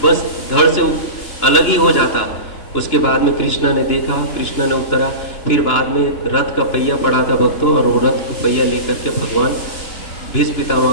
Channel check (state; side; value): late; right; 2.9 ms